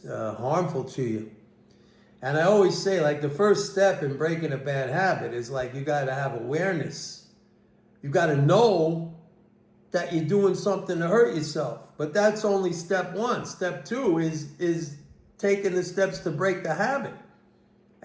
harmful to you. And I always say, like, the first step in breaking a bad habit is like you got to have awareness. You got to know that you're doing something to hurt yourself. But that's only step one. Step two is taking the steps to break the habit.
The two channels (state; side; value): identical; both; correlation 1.00